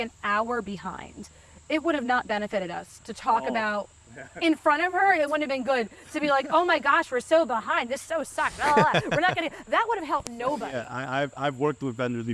hour behind. It would have not benefited us to talk about in front of her. It wouldn't have been good to be like, oh my gosh, we're so behind. This so sucks. We're not gonna. That would have helped nobody. Yeah, I've worked with vendors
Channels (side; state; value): both; identical; correlation 1.00